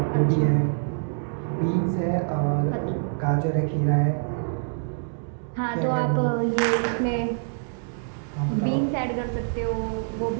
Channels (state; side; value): silent; left; digital silence